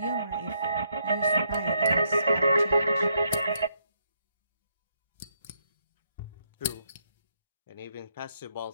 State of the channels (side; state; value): both; inverted; correlation -0.75